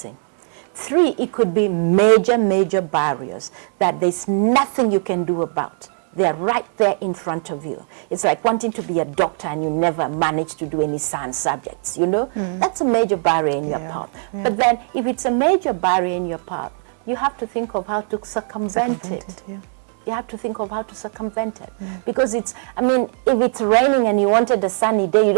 Three, it could be major, major barriers that there's nothing you can do about. They're right there in front of you. It's like wanting to be a doctor and you never manage to do any science subjects, That's a major barrier in your path. Yeah. But then if it's a major barrier in your path, you have to think of how to circumvent it. Yeah. You have to think of how to circumvent it. Because if it's raining and you wanted a sunny day, you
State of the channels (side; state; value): left; silent; 64 dB below the other